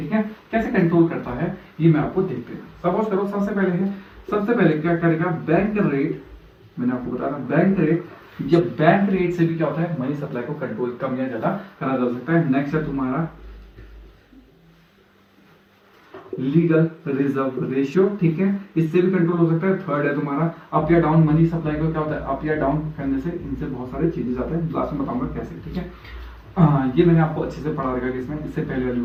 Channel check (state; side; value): identical; both; correlation 1.00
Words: है। कैसे कंट्रोल करता है ये मैं आपको देखते हैं। सपोज करो सबसे पहले है सबसे पहले क्या करेगा, बैंक रेट, मैंने आपको बताया था बैंक रेट, जब बैंक रेट से भी क्या होता है मनी सप्लाई को कंट्रोल कम या ज्यादा करा जा सकता है। नेक्स्ट है तुम्हारा लीगल रिजर्व रेशियो, ठीक है, इससे भी कंट्रोल हो सकता है। थर्ड है तुम्हारा अप या डाउन, मनी सप्लाई को क्या होता है अप या डाउन करने से इनसे बहुत सारे चेंजेस आते हैं, लास्ट में बताऊंगा कैसे, ठीक है। ये मैंने आपको अच्छे से पढ़ा रखा है इसमें, इससे पहले वाली